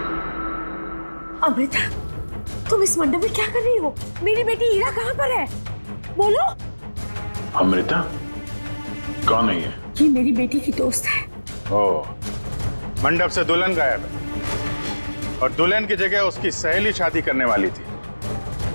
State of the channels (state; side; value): inverted; both; correlation -1.00